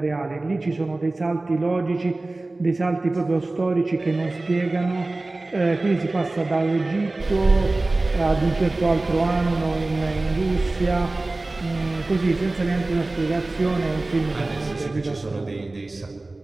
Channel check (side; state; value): left; quieter; 3.0 dB